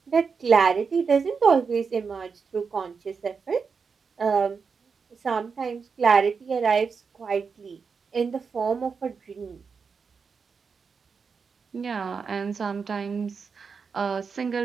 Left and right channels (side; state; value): left; quieter; 5.5 dB